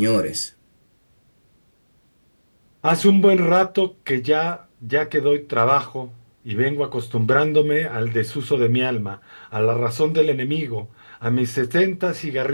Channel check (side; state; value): both; inverted; correlation -1.00